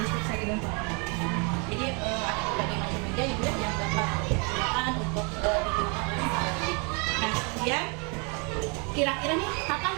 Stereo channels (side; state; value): left; quieter; 33.7 dB